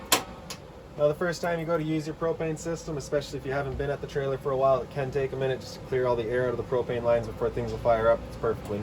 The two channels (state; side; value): identical; both; correlation 1.00